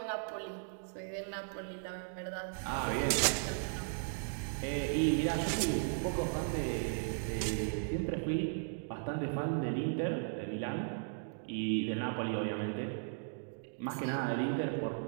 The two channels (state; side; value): silent; left; digital silence